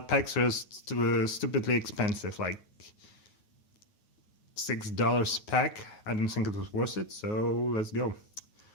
packs were stupidly expensive, like $6 a pack. I don't think it was worth it, so let's go.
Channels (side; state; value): right; late; 9.3 ms